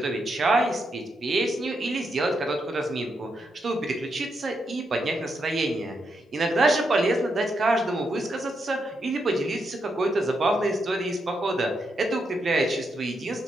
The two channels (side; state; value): both; normal; correlation 0.82